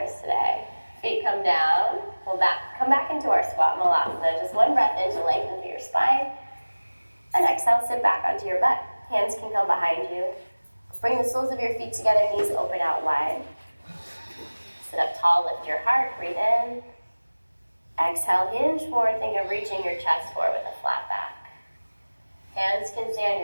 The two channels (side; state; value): both; inverted; correlation -1.00